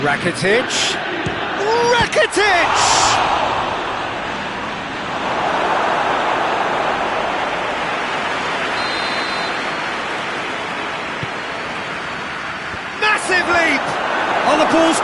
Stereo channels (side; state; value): both; identical; correlation 1.00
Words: Rakitic. Rakitic! Massive leap! Oh, the ball's